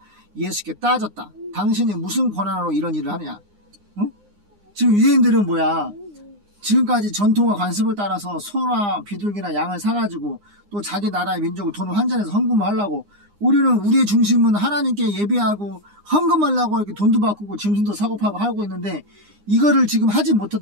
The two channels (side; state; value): left; late; 9.8 ms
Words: 예수께 따졌다. 당신이 무슨 권한으로 이런 일을 하느냐? 응? 지금 유대인들은 뭐야? 지금까지 전통과 관습을 따라서 소나 비둘기나 양을 사가지고 또 자기 나라의 민족을 돈을 환전해서 헌금을 하려고, 우리는 우리의 중심은 하나님께 예배하고 헌금하려고 이렇게 돈도 바꾸고 짐승도 사고 파고 하고 있는데 이거를 지금 하지